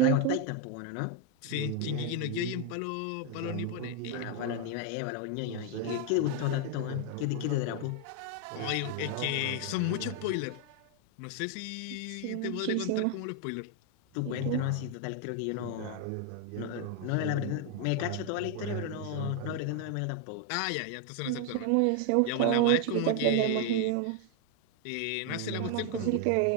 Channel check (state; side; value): different; both; correlation 0.01